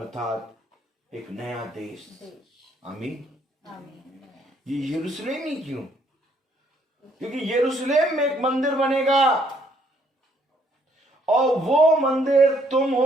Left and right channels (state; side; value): normal; both; correlation 0.67